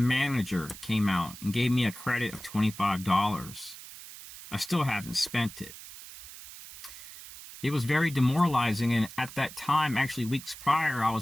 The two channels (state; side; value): noise; right; hiss, 15 dB below the sound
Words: came out and gave me a credit of $25. I still haven't spent it. It was very demoralizing, and at that time, actually weeks prior, I